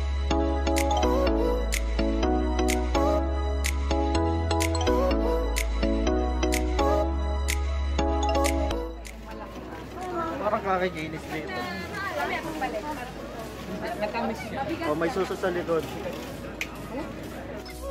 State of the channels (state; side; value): identical; both; correlation 1.00